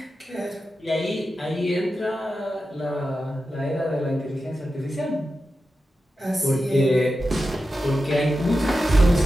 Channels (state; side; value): normal; both; correlation 0.91